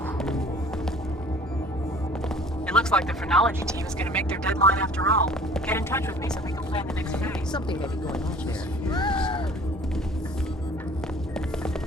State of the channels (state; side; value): normal; both; correlation 0.50